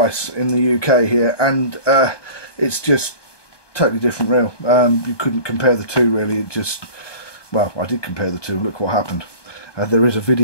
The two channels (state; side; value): late; right; 1.2 ms